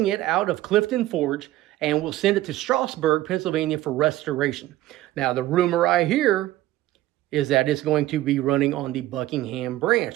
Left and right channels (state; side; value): quieter; left; 15.5 dB